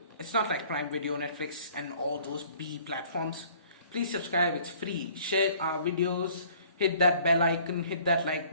It's not like Prime Video, Netflix, and all those B platforms. Please subscribe, it's free. Share our videos, hit that bell icon, hit that like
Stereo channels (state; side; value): inverted; both; correlation -0.55